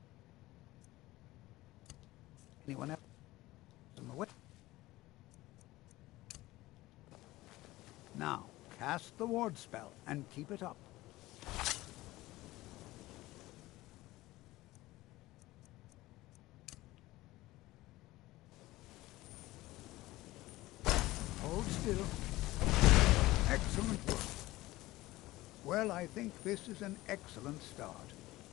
anyone else in the way? Now, cast the ward spell and keep it up. Hold still. Excellent work. Well, I think this is an excellent start.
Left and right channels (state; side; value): quieter; right; 18.2 dB